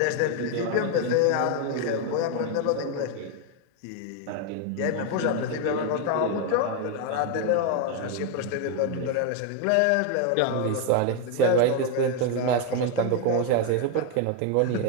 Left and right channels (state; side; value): different; both; correlation 0.02